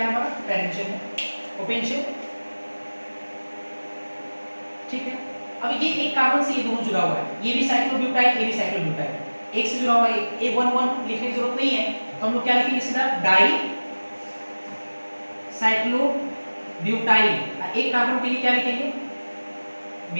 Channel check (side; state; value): both; inverted; correlation -1.00